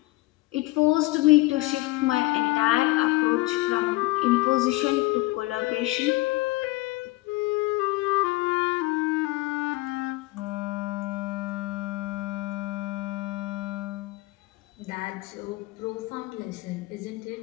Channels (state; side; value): quieter; right; 20.7 dB